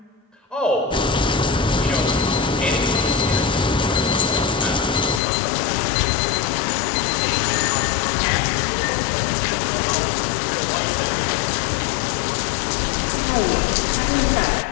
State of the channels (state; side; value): drops out; right; at 5.2 s